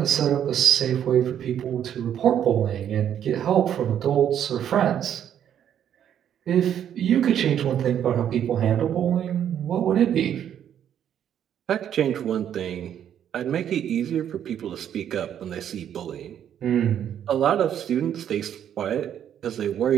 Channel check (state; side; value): quieter; left; 9.7 dB